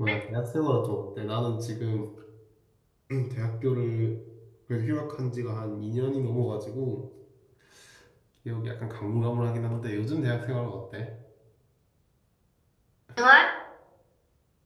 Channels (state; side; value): identical; both; correlation 1.00